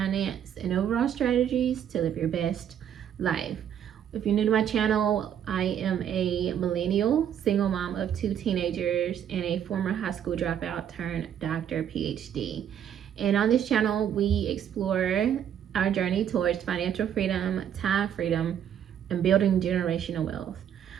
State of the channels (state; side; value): quieter; left; 9.4 dB